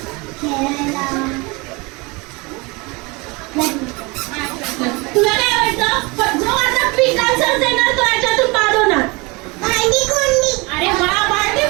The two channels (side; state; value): left; quieter; 26.4 dB